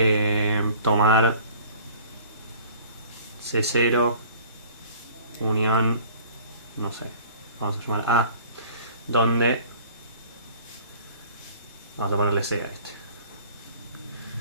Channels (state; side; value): inverted; both; correlation -0.49